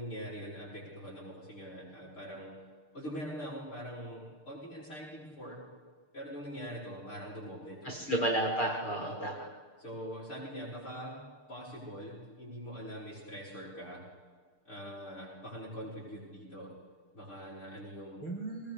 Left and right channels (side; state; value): right; late; 6.7 ms